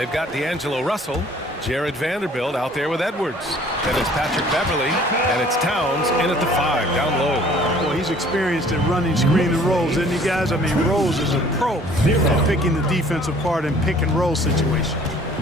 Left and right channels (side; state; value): both; normal; correlation 0.54